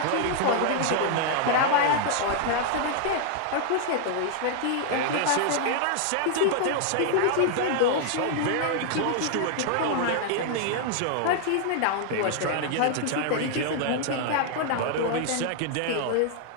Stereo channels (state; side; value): different; both; correlation 0.00